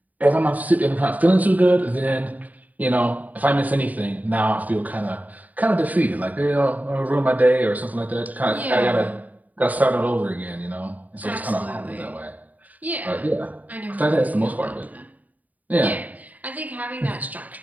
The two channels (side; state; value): left; late; 0.076 ms